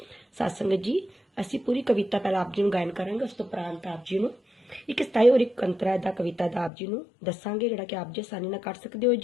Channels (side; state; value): right; drops out; at 6.7 s